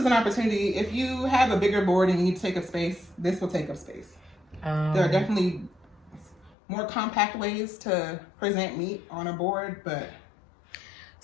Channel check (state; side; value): drops out; right; at 6.6 s